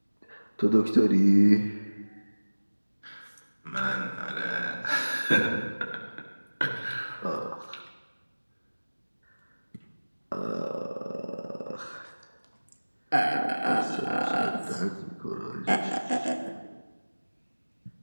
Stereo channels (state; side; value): inverted; both; correlation -1.00